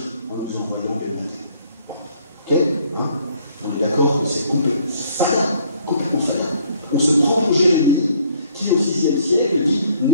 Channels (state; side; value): inverted; both; correlation -0.62